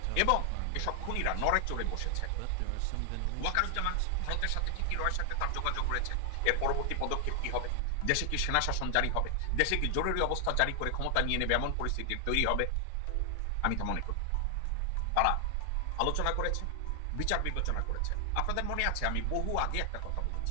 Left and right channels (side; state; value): both; different; correlation 0.00